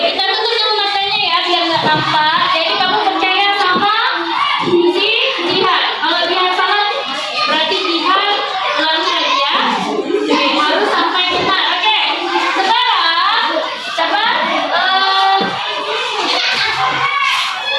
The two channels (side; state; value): both; identical; correlation 1.00